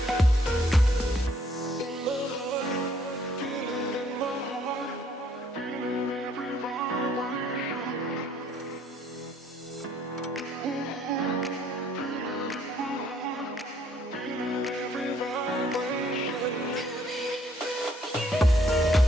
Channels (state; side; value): normal; both; correlation 0.65